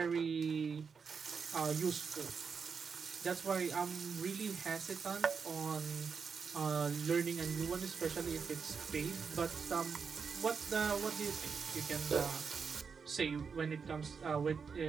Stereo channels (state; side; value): quieter; left; 5.8 dB